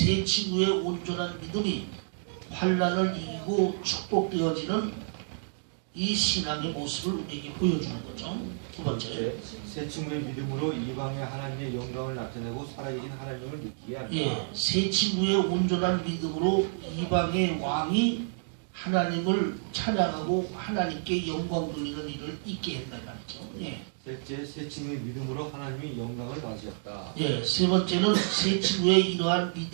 친구의 온전한 믿음이 환난을 이기고 축복되어지는 이 신앙의 모습을 우리에게 보여주는 거죠. 두 번째, 새 친구의 믿음으로 이방의 하나님의 영광을 나타내고 살아계신 하나님을 느끼게 한다. 예, 새 친구의 온전한 믿음으로 이방의 왕이 하나님을 찬양하고 하나님께 영광 돌리는 일을 있게 했단 말이죠. 예. 셋째, 새 친구의 믿음으로 하나님이 영광을 받으셨다. 예, 세 번째는 새 친구의 이러한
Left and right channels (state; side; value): silent; left; digital silence